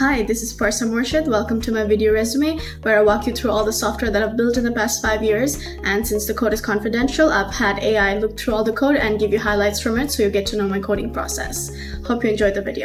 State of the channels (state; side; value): identical; both; correlation 1.00